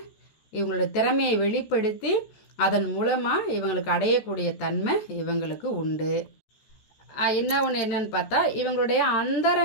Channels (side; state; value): right; late; 14 ms